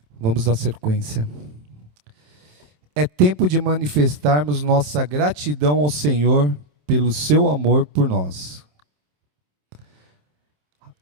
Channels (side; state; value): left; late; 27 ms